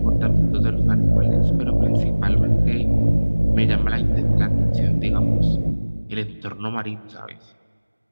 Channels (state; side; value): inverted; both; correlation -1.00